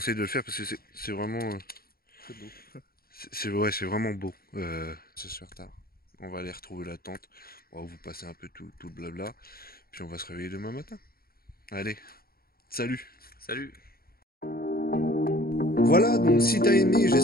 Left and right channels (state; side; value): late; right; 0.44 ms